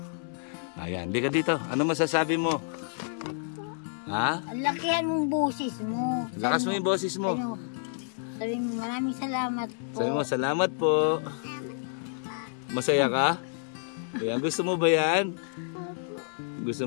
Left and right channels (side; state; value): right; silent; digital silence